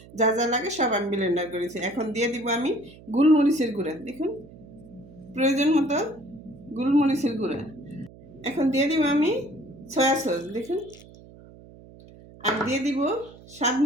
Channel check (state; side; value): noise; right; hum, 21 dB below the sound